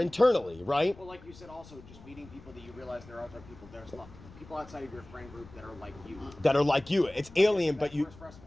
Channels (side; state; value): left; noise; rumble, 20 dB below the sound